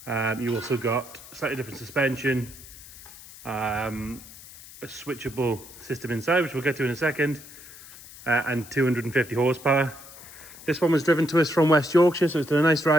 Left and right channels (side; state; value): left; noise; hiss, 18 dB below the sound